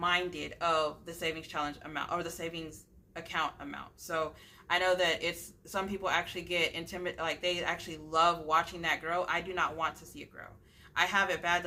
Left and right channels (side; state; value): both; identical; correlation 1.00